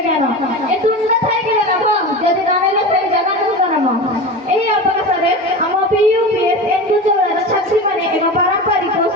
ज्ञान ए तुंड थाइकिबे लाभ जदि नाइले से जगन्नाथ नाम एही अवसरे हम पीयूपीएस एनजू चौरार छात्री माने एवं पारंपरिक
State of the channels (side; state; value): both; normal; correlation 0.29